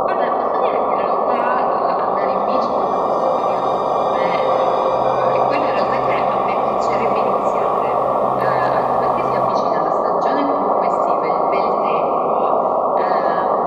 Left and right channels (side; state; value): both; identical; correlation 1.00